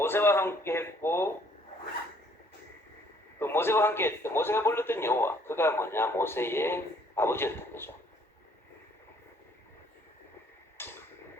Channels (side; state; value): both; normal; correlation 0.62